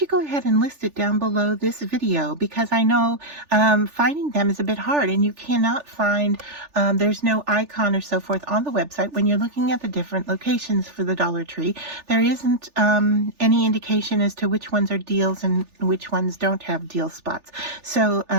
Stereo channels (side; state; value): left; late; 3.4 ms